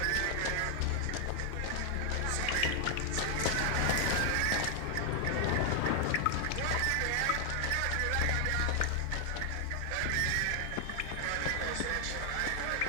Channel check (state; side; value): different; both; correlation 0.00